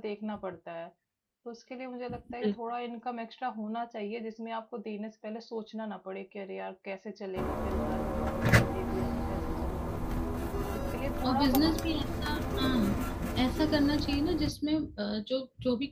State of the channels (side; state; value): both; identical; correlation 1.00